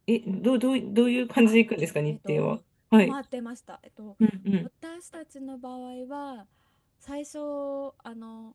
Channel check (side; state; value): both; identical; correlation 1.00